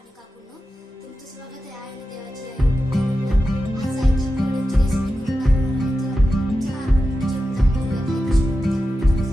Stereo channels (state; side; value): normal; both; correlation 0.91